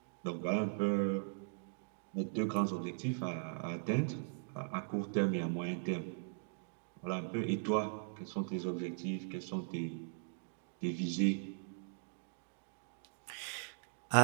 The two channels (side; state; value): left; silent; digital silence